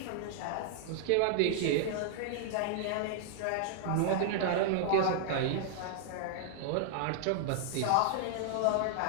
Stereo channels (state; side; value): different; both; correlation -0.01